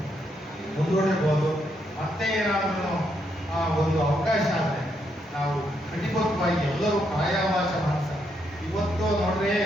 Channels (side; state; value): both; normal; correlation 0.77